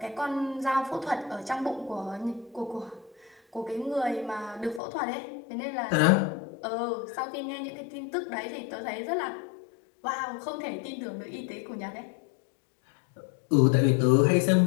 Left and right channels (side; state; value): right; drops out; at 4.8 s